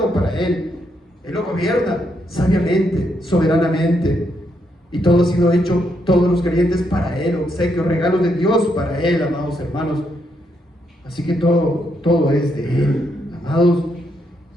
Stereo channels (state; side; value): normal; both; correlation 0.78